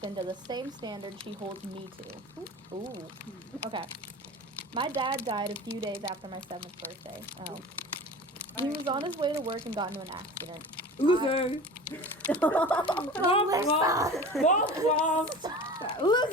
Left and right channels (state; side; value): normal; both; correlation 0.36